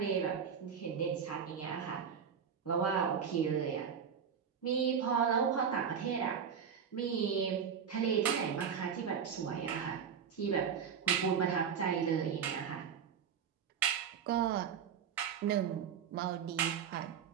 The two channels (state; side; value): quieter; left; 7.4 dB